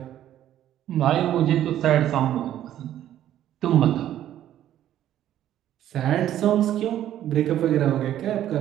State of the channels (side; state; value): left; quieter; 11.9 dB